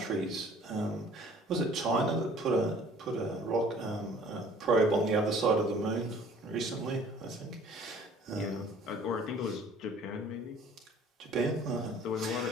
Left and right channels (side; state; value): both; normal; correlation 0.53